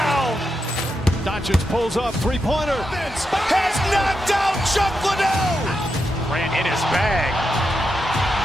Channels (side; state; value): both; normal; correlation 0.85